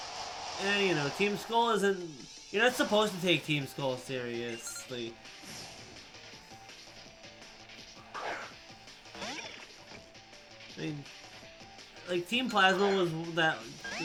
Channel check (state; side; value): identical; both; correlation 1.00